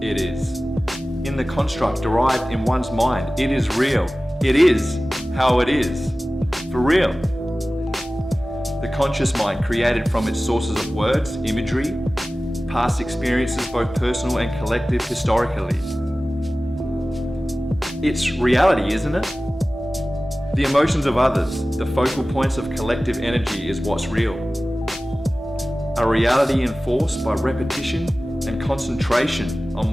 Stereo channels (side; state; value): both; normal; correlation 0.97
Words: is. In the construct derived in one's mind, it is real. It is how it is. For real. The conscious mind, created from its sources of words, imagery, past experiences, both personal and collective, historically. It's reality, isn't it? The emotions of others, the focal points of collective energy, is what's real. A reality enforced by repetition and concentration on